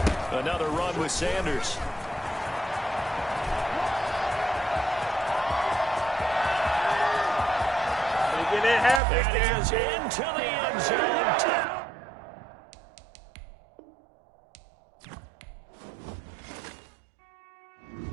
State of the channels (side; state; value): left; drops out; at 9.0 s